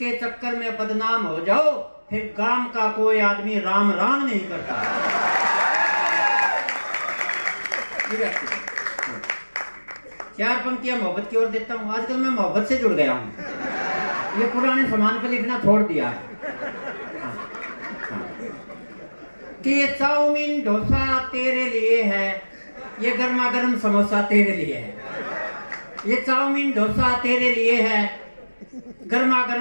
चक्कर में बदनाम हो जाओ, फिर गांव का कोई आदमी राम राम नहीं करता। चार पंक्तियां मोहब्बत की ओर देता हूँ। आजकल मैं मोहब्बत से जुड़ गया हूँ, ये पुराने सामान पे लिखना छोड़ दिया। कि ये चाउमीन डोसा तेरे लिए है, ये गर्मा गर्म समोसा तेरे लिए है। ये चाउमीन डोसा तेरे लिए है, गर्मा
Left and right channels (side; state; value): both; inverted; correlation -1.00